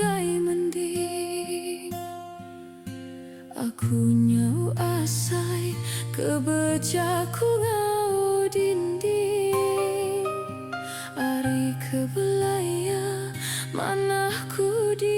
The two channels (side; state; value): both; identical; correlation 1.00